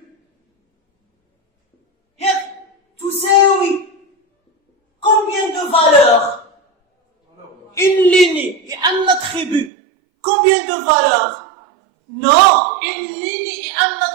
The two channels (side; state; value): left; drops out; at 9.7 s